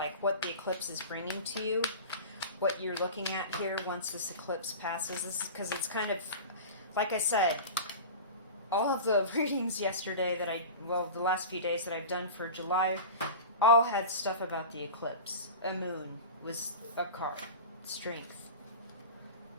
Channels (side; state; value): both; inverted; correlation -0.32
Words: what the eclipse is bringing to you, what you're looking at here once this eclipse passes. This is because it's kind of, like I said, all of the readings yesterday the last few days that I've done for July, all had stuff about the eclipse. A moon was a card. Strength.